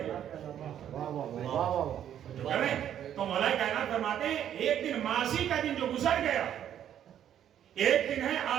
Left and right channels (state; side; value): quieter; left; 10.2 dB